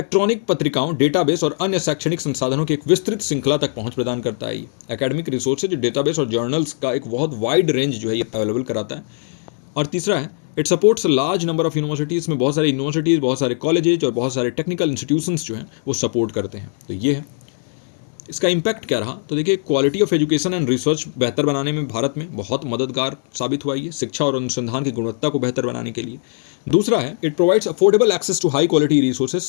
पत्रिकाओं, डेटाबेस और अन्य शैक्षणिक संसाधनों की एक विस्तृत श्रृंखला तक पहुंच प्रदान करता है। ये एकेडमिक रिसोर्सेज, डेटाबेस और जर्नल्स का एक बहुत वाइड रेंज जो है ये अवेलेबल कराता है। और तीसरा है, it supports large number of universities, में बहुत सारी यूनिवर्सिटीज़, बहुत सारे कॉलेजेज और बहुत सारे टेक्निकल इंस्टीट्यूशंस जो हैं वो सपोर्ट करते हैं। तो ये है इसका इम्पैक्ट क्या रहा। तो देखिए, quality of education and research बेहतर बनाने में भारत में बहुत मददगार साबित हुआ ये, शिक्षा और अनुसंधान की गुणवत्ता को बेहतर बनाने के लिए। दूसरा है, it provides affordable access to high quality resources.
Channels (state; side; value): silent; right; digital silence